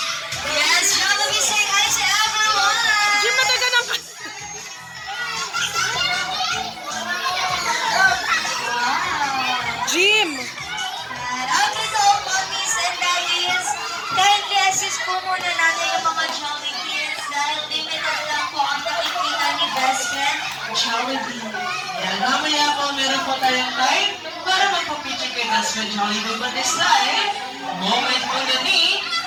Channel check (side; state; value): both; identical; correlation 1.00